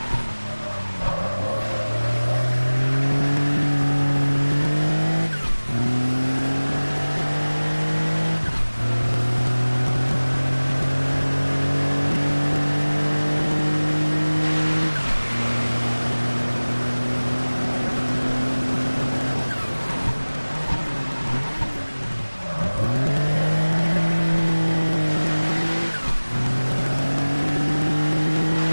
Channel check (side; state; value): both; inverted; correlation -1.00